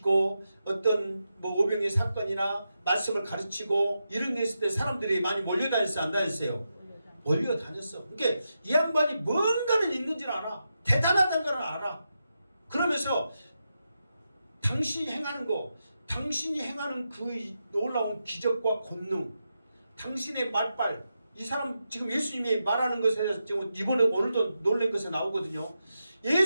어떤 뭐 오병의 사건이나 말씀을 가르치고 이런 데 있을 때 사람들이 많이 몰려다녔어요 안 다녔어요? 몰려다녔어. 그러니까 이 양반이 뭔가는 있는지는 알아. 대단하다는 걸 알아. 그러면서 당신이 행하는 거, 당신이 행하는 그 놀라운 기적과 권능, 당신의 말빨, 이 사람 지금 예수님이 말하는 것에 지금 이번에 오늘도 놀란 것에 나오거든요.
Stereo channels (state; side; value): inverted; both; correlation -0.87